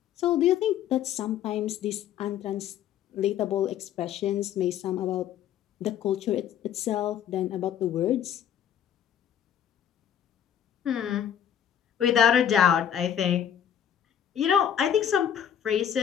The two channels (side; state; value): right; quieter; 9.5 dB